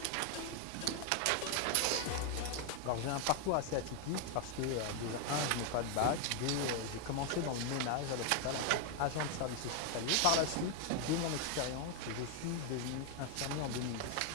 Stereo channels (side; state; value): both; different; correlation 0.01